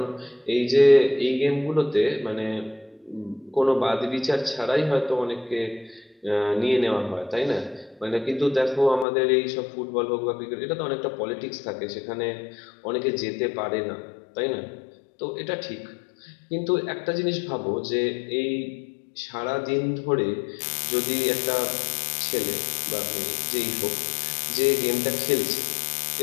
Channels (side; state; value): right; drops out; at 9.1 s